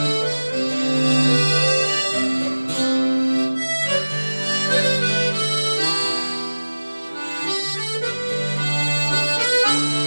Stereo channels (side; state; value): both; inverted; correlation -1.00